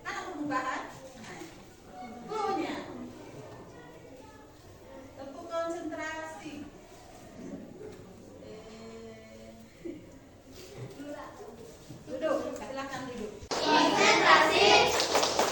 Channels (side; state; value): both; identical; correlation 1.00